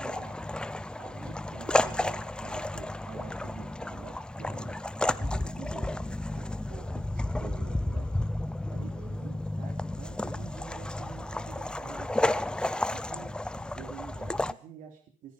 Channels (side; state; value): both; normal; correlation 0.91